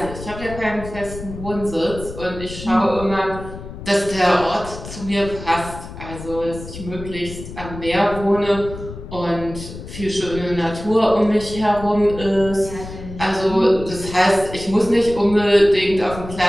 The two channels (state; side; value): noise; left; rumble, 12 dB below the sound